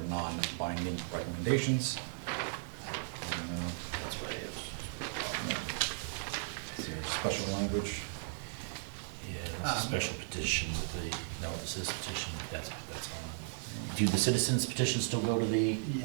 non-binding recommendations. That's what it is. Is there special language? Yeah, that's a special petition with the, no, this is petition, that's on. Do the citizens petitions still go to the,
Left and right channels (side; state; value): left; silent; digital silence